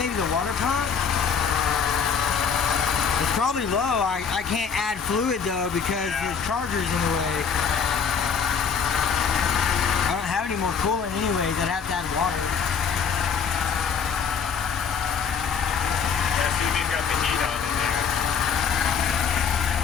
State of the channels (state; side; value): quieter; right; 6.5 dB